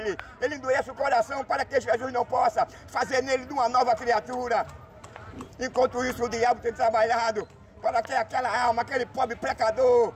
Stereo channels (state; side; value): identical; both; correlation 1.00